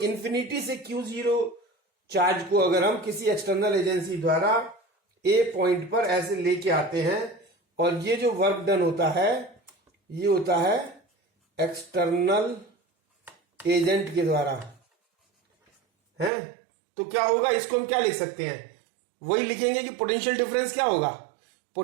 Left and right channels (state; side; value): drops out; left; at 16.3 s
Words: इंफिनिटी से Q0 चार्ज को अगर हम किसी एक्सटर्नल एजेंसी द्वारा A पॉइंट पर ऐसे लेके आते हैं, और ये जो वर्क डन होता है ये होता है एक्सटर्नल एजेंट के द्वारा, है। तो क्या होगा, इसको हम क्या लिख सकते हैं? वही लिखेंगे कि पोटेंशियल डिफरेंस क्या होगा।